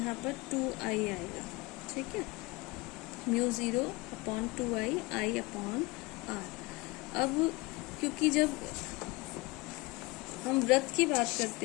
पर 2I आएगा, ठीक है, mu zero upon 2I upon R। अब क्योंकि जब हम वृत्त की बात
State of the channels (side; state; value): right; quieter; 23.4 dB